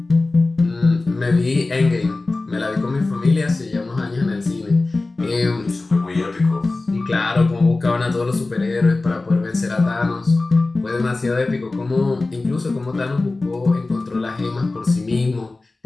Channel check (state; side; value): quieter; right; 3.3 dB